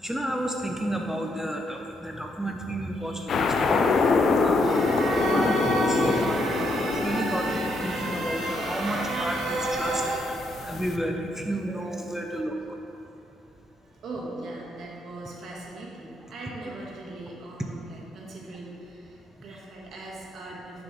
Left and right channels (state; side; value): normal; both; correlation 0.76